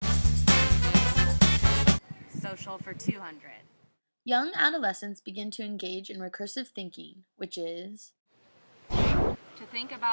Social for 200. young adolescents begin to engage in recursive thinking, which is To think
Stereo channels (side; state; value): both; inverted; correlation -1.00